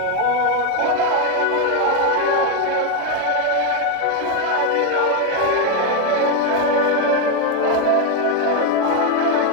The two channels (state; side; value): different; both; correlation 0.02